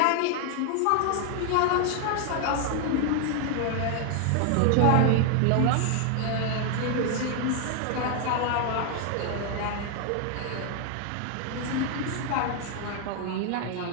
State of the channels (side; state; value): both; different; correlation 0.00